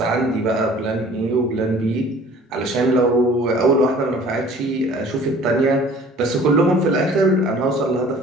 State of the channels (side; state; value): both; normal; correlation 0.49